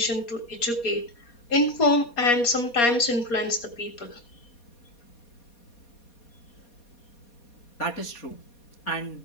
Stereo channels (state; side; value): late; right; 4.2 ms